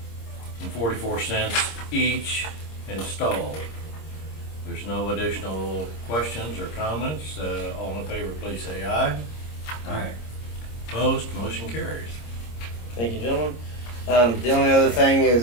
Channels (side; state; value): right; late; 26 ms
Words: each installed. There's no additional questions or comments. All in favor, please say aye. Aye. Opposed, motion carries. Thank you, gentlemen. The only other thing